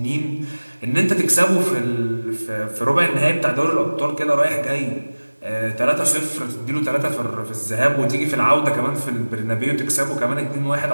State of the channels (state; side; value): inverted; both; correlation -1.00